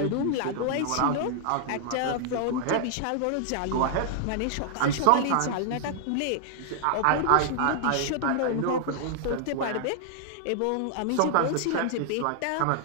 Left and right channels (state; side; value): different; both; correlation -0.01